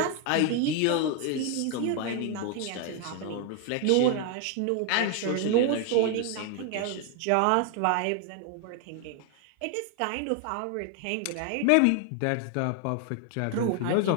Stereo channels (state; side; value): different; both; correlation 0.00